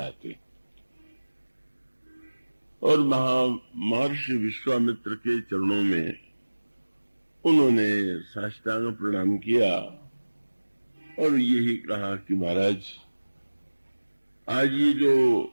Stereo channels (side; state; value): both; inverted; correlation -1.00